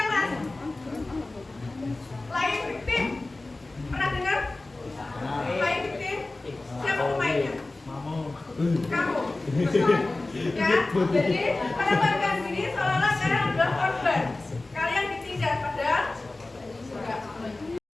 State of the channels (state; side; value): quieter; right; 3.0 dB